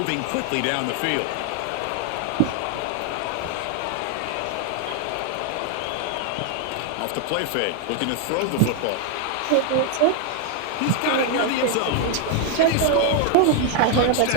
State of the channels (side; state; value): both; different; correlation 0.00